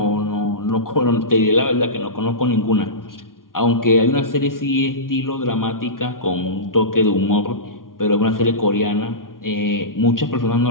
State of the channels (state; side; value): late; right; 0.91 ms